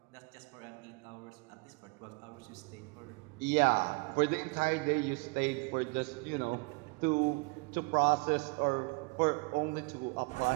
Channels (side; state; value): left; quieter; 30.8 dB